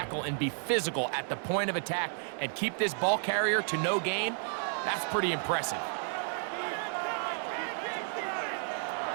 and be physical at the point of attack and keep this ball carrier to no gain, that's pretty impressive.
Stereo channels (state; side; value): silent; left; 56 dB below the other